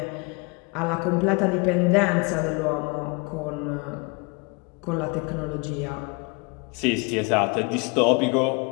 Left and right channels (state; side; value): quieter; right; 30.0 dB